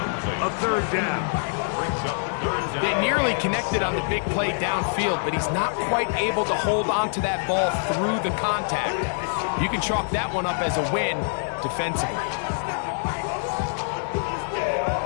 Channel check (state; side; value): silent; right; digital silence